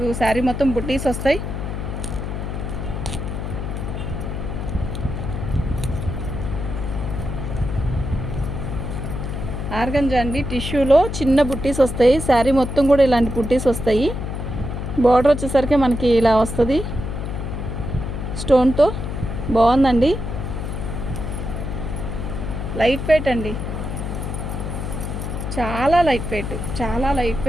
శారీ మొత్తం బుట్టీస్ వస్తాయి. ఆర్గంజా అండి, టిష్యూలో చిన్న బుట్టీస్ వస్తాయి. శారీ మొత్తం కూడా ఇలాంటి బుట్టీస్ వస్తాయి. బార్డర్ వచ్చేసరికి మనకి ఇలా వస్తుంది స్టోన్తో. బాగుందండి, లైట్ వెయిట్ అండి, చాలా లైట్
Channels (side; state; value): left; noise; hum, 4 dB below the sound